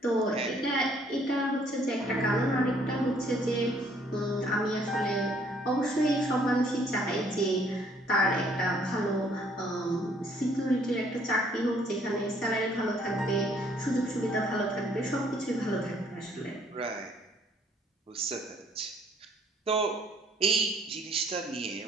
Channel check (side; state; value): both; normal; correlation 0.63